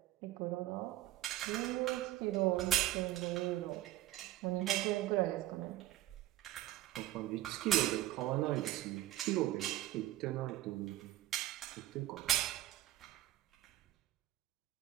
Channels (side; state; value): left; quieter; 15.1 dB